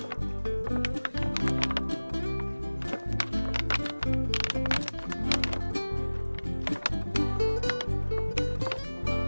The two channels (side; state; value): both; inverted; correlation -1.00